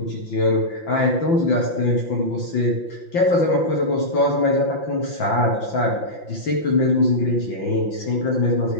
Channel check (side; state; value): right; late; 5.8 ms